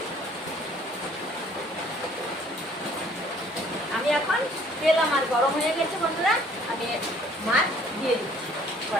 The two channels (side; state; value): both; normal; correlation 0.58